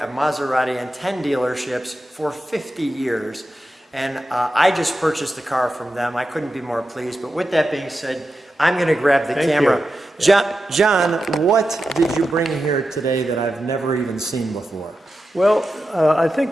Maserati, and 10 dealerships for 50 years. And I just purchased the car from them. I couldn't be more pleased. But with that being said, I'm going to grab the camera. John, what did you bring here today that I've never even seen before? Well, I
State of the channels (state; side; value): normal; both; correlation 0.90